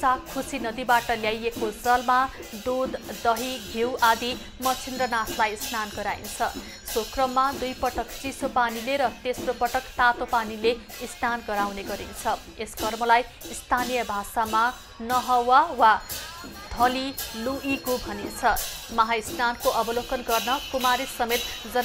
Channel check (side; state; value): both; identical; correlation 1.00